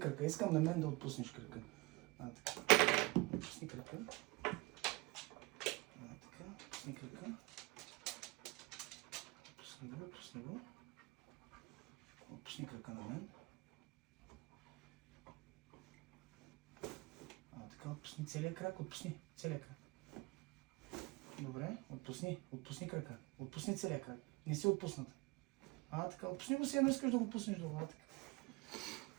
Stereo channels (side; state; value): left; quieter; 24.4 dB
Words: Искам на мен да отпуснеш крака. Така. Отпусни крака. Така. Отпусни крака. Отпусни го, отпусни го. Отпусни крака на мен. Така, отпусни целия крак, отпусни целия крак. Добре, отпусни крака. Отпусни целия крак. Не си отпуснат. Така, отпусни го си, едно искаш да го пуснеш долу. Така.